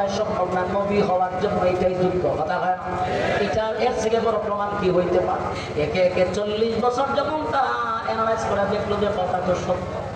সম্ভব না, নবী হওয়ার জন্য এটাই যোগ্য। কথা হয় না? এটা এর থেকে বড় প্রমাণ কি হইতে পারে? একে একে 40 বছর যখন তারা অ্যানালাইজ করে দেখলো যে কথা তো সত্য,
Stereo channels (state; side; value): identical; both; correlation 1.00